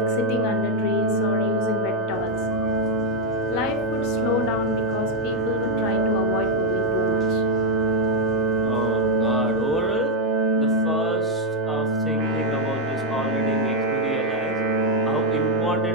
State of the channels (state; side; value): normal; both; correlation 0.00